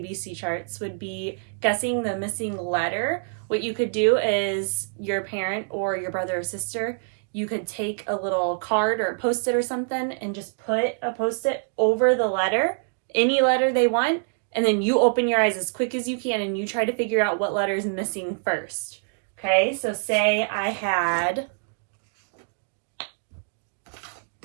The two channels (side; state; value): left; silent; digital silence